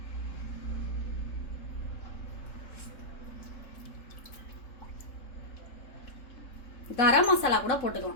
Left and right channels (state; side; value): late; right; 3.7 ms